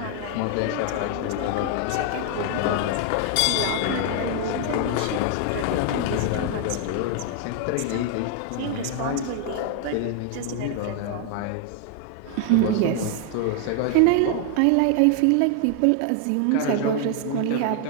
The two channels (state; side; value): different; both; correlation 0.00